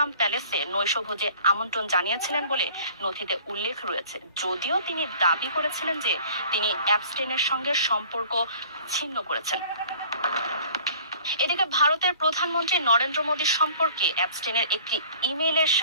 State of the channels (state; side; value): inverted; both; correlation -0.50